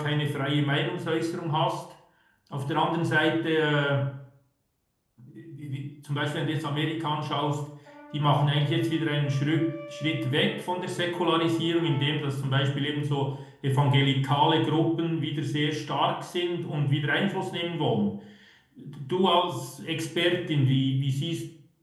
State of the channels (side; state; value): both; identical; correlation 1.00